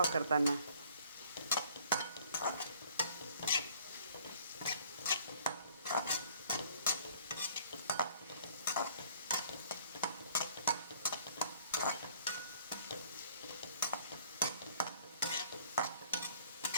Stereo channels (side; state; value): both; inverted; correlation -0.57